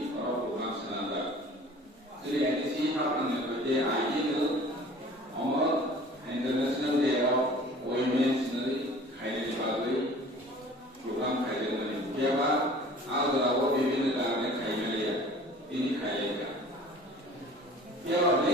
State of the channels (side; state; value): both; normal; correlation 0.46